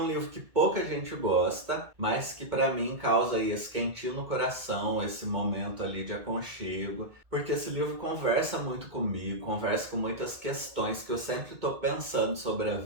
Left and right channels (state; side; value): late; left; 2.2 ms